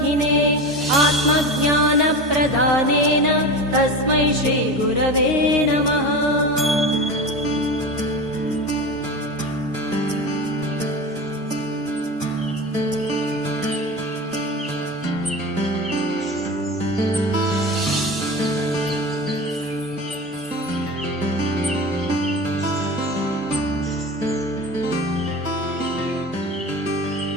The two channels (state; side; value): normal; both; correlation 0.28